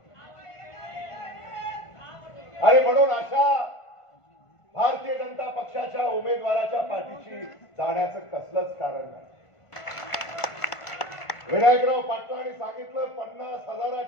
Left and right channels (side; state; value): right; late; 1.5 ms